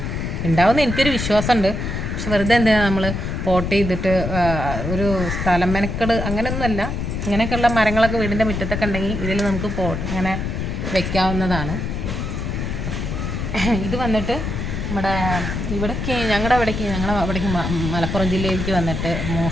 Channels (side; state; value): left; noise; rumble, 3 dB below the sound